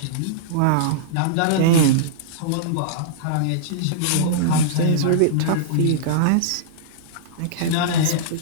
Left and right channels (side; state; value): both; different; correlation -0.02